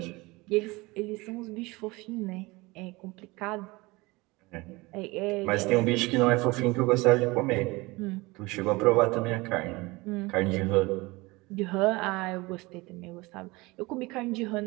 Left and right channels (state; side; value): quieter; left; 23.0 dB